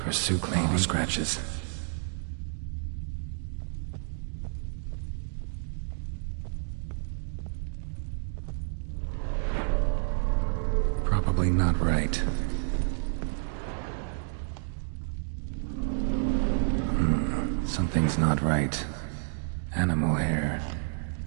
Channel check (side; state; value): left; silent; digital silence